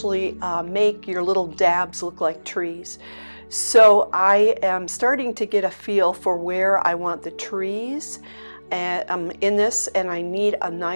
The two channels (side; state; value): both; inverted; correlation -1.00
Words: make your little dabs look like trees. So I am starting to get a feel for where I want the trees in this, and I need a